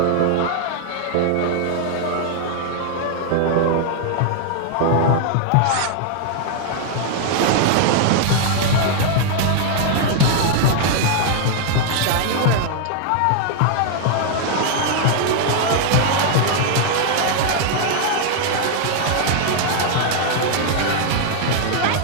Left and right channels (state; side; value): different; both; correlation 0.00